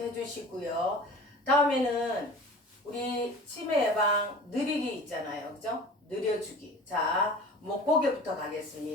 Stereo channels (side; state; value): both; normal; correlation 0.40